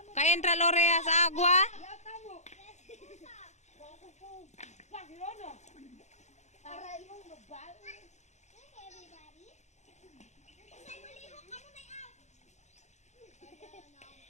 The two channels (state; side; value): late; right; 0.33 ms